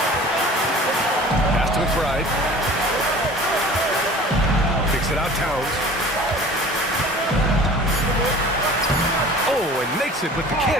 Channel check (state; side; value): normal; both; correlation 0.44